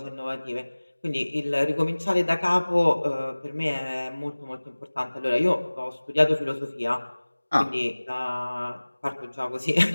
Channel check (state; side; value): inverted; both; correlation -1.00